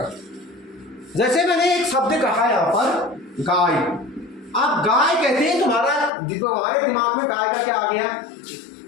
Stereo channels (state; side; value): drops out; right; at 6.1 s